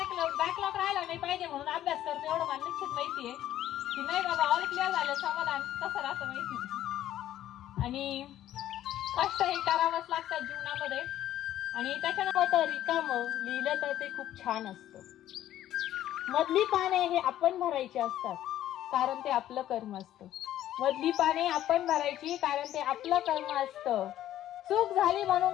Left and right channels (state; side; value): quieter; right; 12.6 dB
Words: राहिला नाही पाहिजे म्हणून अभ्यास करतो, एवढं मला निश्चित माहितीये की नाही बाबा ऑल क्लिअर झालं समाधान कसं राहतं माहिती. आणि कष्ट हे करावंच लागतात जीवनामध्ये. आणि त्याच्यानंतर रिकाम लिहिलं तर ते खूप छान असतं. मधली पाने हे आपण भरायची असतात, कारण ते आपलं कर्म असतं. मधली पाने आपण भरायची, कारण ते आपलं कर्म असतं. चूक झाली म्हणून